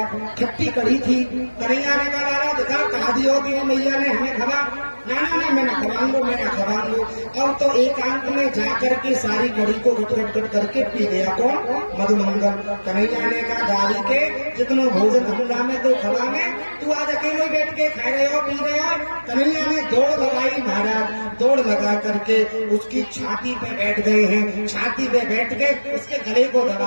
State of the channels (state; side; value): inverted; both; correlation -1.00